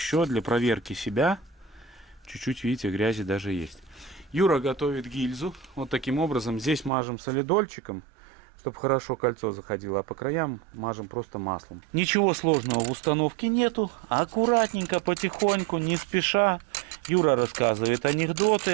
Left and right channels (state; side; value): drops out; left; at 6.9 s